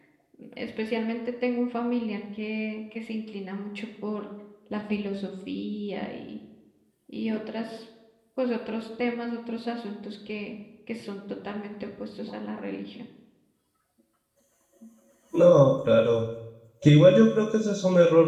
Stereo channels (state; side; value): identical; both; correlation 1.00